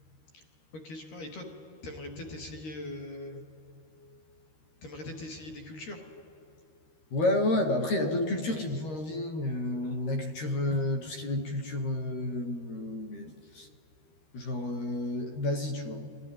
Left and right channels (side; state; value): right; late; 13 ms